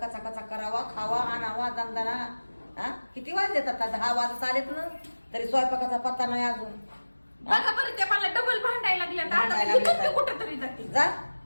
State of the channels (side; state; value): both; inverted; correlation -1.00